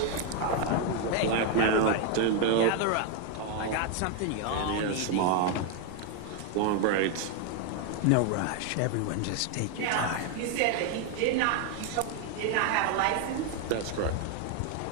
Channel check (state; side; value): different; both; correlation 0.01